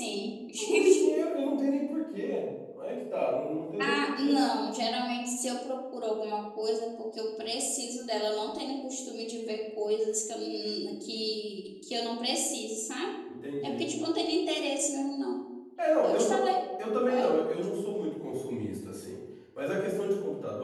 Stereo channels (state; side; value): identical; both; correlation 1.00